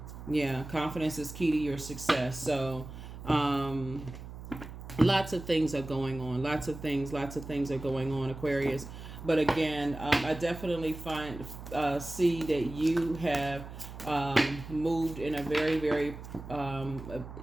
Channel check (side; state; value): right; noise; hum, 12 dB below the sound